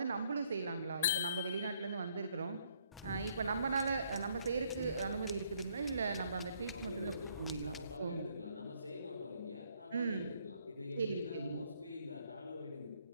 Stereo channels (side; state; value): both; inverted; correlation -0.69